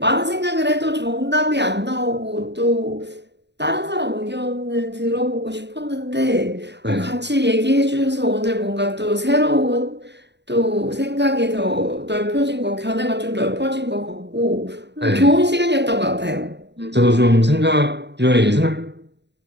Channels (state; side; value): late; left; 0.50 ms